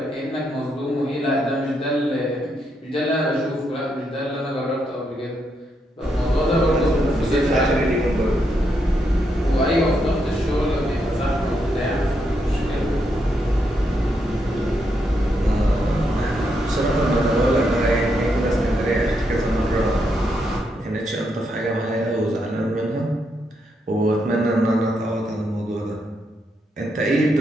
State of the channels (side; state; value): both; normal; correlation 0.80